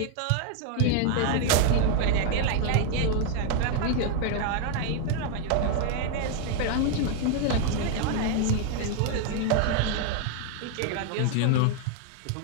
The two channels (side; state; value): both; different; correlation 0.00